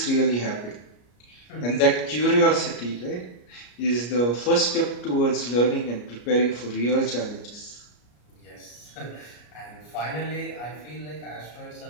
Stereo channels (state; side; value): late; right; 33 ms